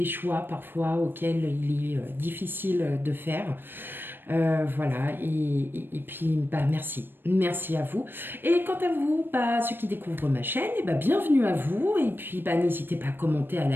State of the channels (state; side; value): late; left; 0.097 ms